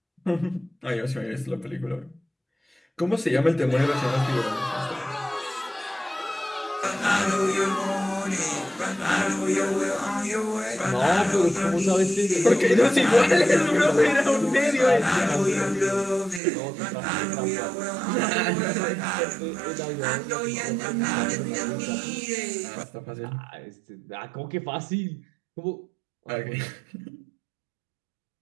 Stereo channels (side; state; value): left; drops out; at 16.4 s